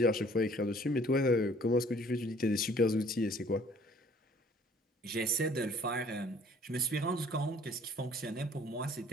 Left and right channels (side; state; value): both; normal; correlation 0.56